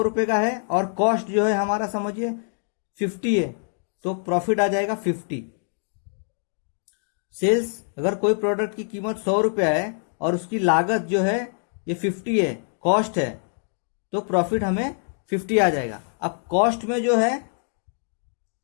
रुपये का है और कॉस्ट जो है हमारा समझिए 50 है, तो प्रॉफिट आ जाएगा 50। सेल्स, अगर कोई प्रोडक्ट की कीमत 100 रुपया है और उसकी लागत जो है ये 50 है, कॉस्ट है, तो प्रॉफिट हमें 50 आ जाएगा। अब कॉस्ट में जो है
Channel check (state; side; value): silent; right; 61 dB below the other